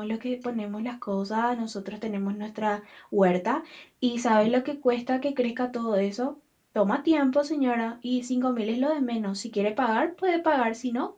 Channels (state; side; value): identical; both; correlation 1.00